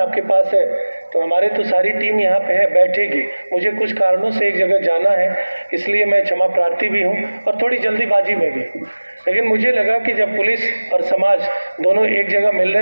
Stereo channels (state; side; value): inverted; both; correlation -1.00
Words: पास है, तो हमारे तो सारी टीम यहाँ पे है, बैठेगी। मुझे कुछ कारणों से एक जगह जाना है, इसलिए मैं क्षमा प्रार्थी भी हूँ और थोड़ी जल्दीबाजी में भी। लेकिन मुझे लगा कि जब पुलिस और समाज दोनों एक जगह मिल